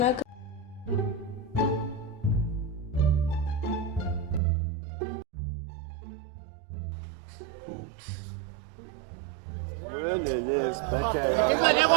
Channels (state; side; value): drops out; left; at 4.4 s